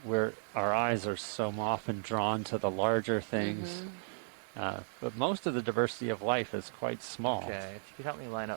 where our eyes are so often drawn to the larger things, but most of the diversity of life is quite small. Okay, if you could help me line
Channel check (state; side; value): silent; left; digital silence